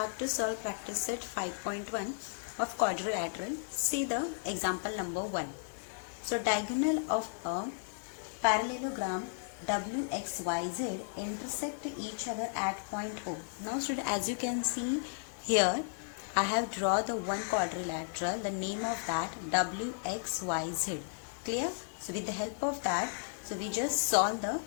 to solve practice set 5.1 of quadrilateral. See the example number 1. So diagonal of a parallelogram WXYZ intersect each other at point O. Now student, as you can see here, I have drawn the one quadrilateral, the name of that WXYZ. Clear? So with the help of that, so we just solve the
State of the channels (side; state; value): right; silent; digital silence